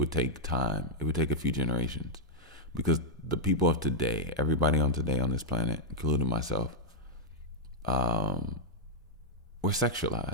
take time. It would take a few generations, because the people of today, everybody on today on this planet, including myself, we're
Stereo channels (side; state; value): both; normal; correlation -0.04